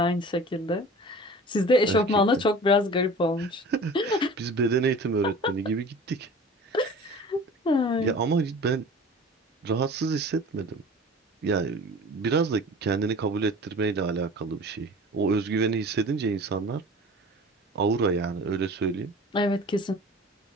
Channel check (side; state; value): both; normal; correlation 0.40